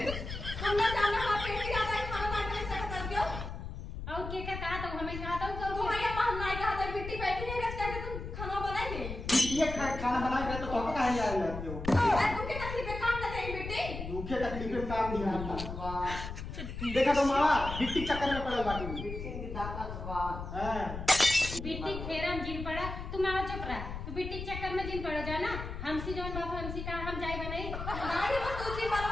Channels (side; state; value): left; noise; rumble, 7 dB below the sound